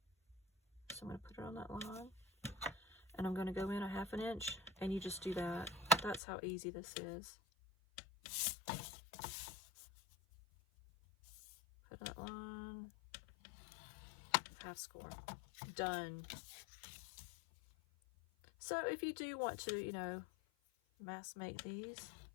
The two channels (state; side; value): drops out; right; at 6.2 s